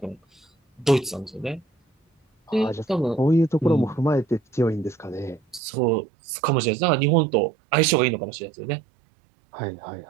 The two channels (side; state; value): left; drops out; at 5.6 s